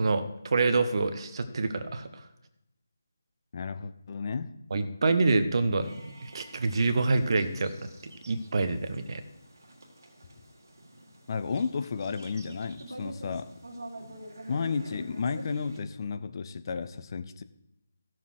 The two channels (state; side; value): inverted; both; correlation -0.86